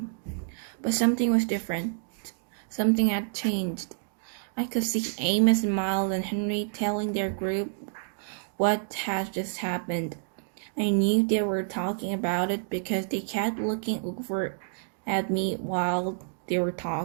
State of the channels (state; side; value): silent; left; digital silence